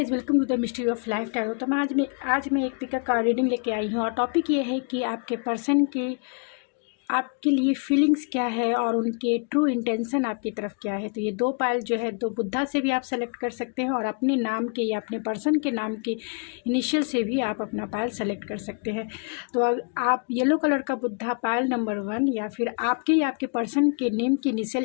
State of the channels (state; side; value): quieter; right; 38.1 dB